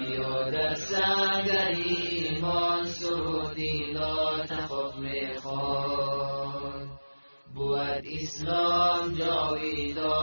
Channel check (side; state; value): both; inverted; correlation -1.00